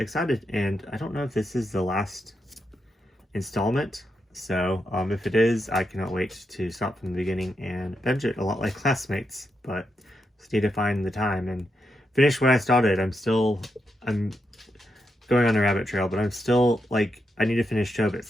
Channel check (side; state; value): both; normal; correlation 0.84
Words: and I don't know if this is the last installment, so if it is, I cannot wait to start from the beginning and binge it, a lot like Classmates, but just need to find the time and finish what I started. I'm going on a rabbit trail, but I'm still, like, I need to finish